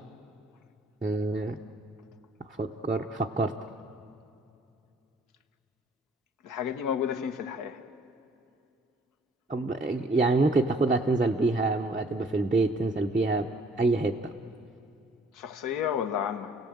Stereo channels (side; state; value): both; normal; correlation 0.57